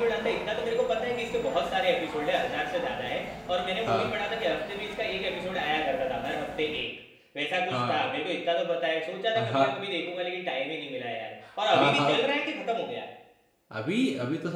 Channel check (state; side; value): identical; both; correlation 1.00